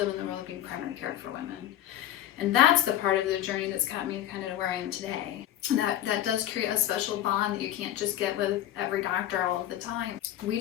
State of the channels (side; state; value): right; quieter; 12.1 dB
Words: in the world of being primary care for women. And that's the part of the journey that's got me kind of to where I am today. And that does create a special bond that you can't just get with every doctor all of the time. We